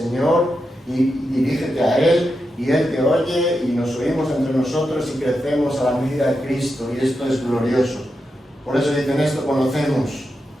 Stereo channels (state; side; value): normal; both; correlation 0.87